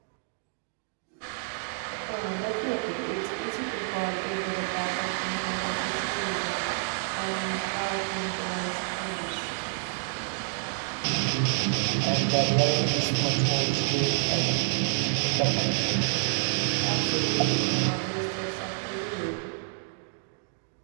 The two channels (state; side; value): silent; left; digital silence